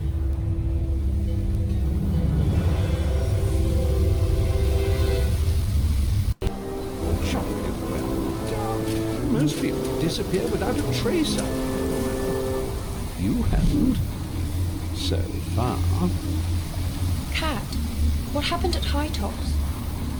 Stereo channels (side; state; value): both; identical; correlation 1.00